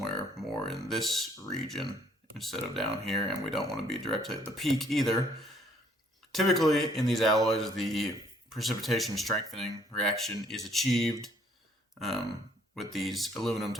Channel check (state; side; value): normal; both; correlation 0.63